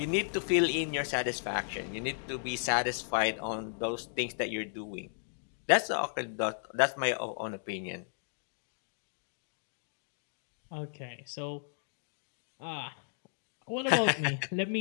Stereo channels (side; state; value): right; silent; digital silence